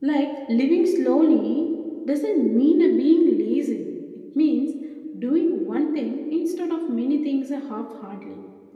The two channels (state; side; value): identical; both; correlation 1.00